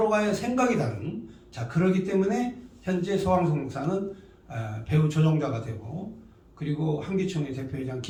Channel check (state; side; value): identical; both; correlation 1.00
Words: 생각이 다른, 자, 그러기 때문에 현재 서광석 목사는 배후 조종자가 되고, 그리고 한기총의 대표회장